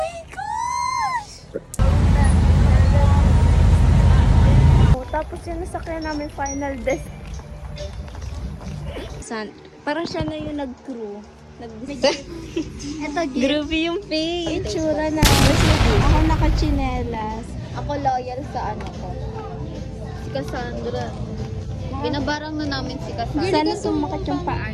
gosh! Tapos yung nasakyan namin final desk. Parang siya na yung nag-crew. Ito, gift. Groovy yung face. Itsura na. Ako naka-chinelas. Ako loyal sa ano ko. Si Cassandra. Binabarang na namin si Cassandra. Sana sumakat yung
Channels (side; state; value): both; identical; correlation 1.00